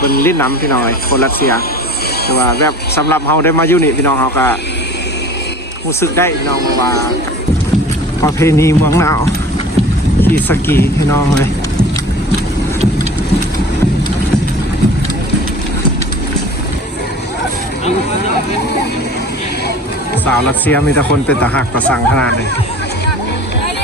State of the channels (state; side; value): normal; both; correlation 0.41